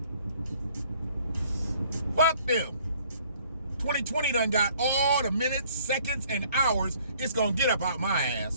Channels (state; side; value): inverted; both; correlation -0.59